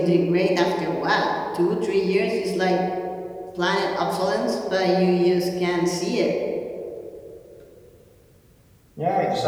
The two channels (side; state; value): both; identical; correlation 1.00